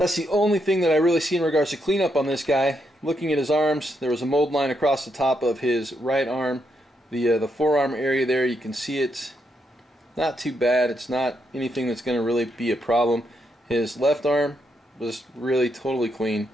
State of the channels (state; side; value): normal; both; correlation 0.79